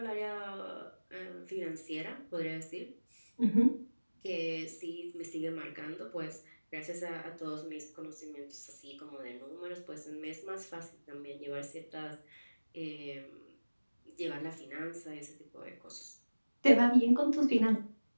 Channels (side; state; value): both; inverted; correlation -1.00